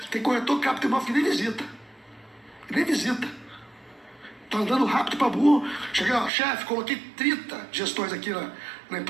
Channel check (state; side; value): drops out; left; at 6.3 s